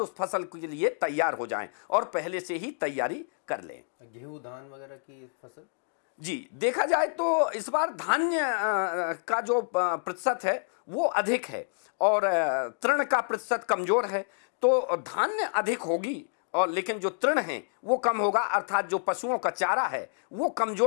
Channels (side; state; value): right; silent; digital silence